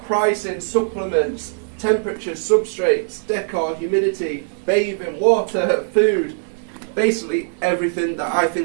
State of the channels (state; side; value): silent; left; digital silence